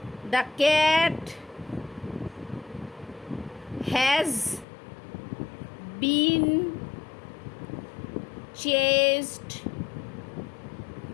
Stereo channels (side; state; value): right; drops out; at 4.7 s